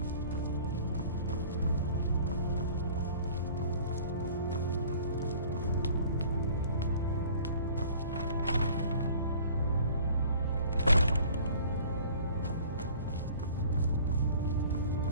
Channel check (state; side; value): inverted; both; correlation -0.49